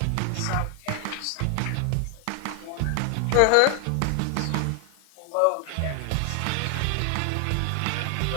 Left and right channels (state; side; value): different; both; correlation 0.00